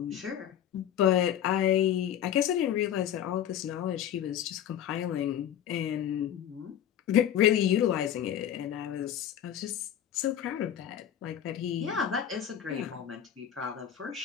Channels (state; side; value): quieter; right; 10.2 dB